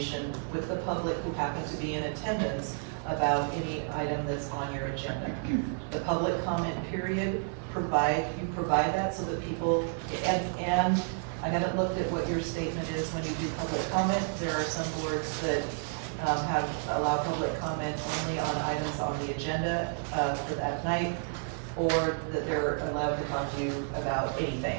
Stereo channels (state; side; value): silent; left; 57 dB below the other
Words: with the public who happen to be in attendance about any item that's on your agenda. The public comment period, you provide that so that people, and I haven't looked at what your statement is when you do public comment. There are some boards that allow public comment only on items on the agenda for that night, or that they're allowed to talk to you about anything,